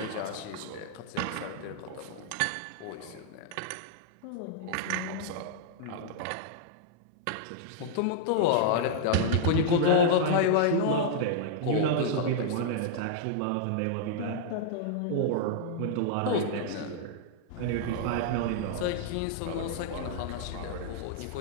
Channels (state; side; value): different; both; correlation -0.01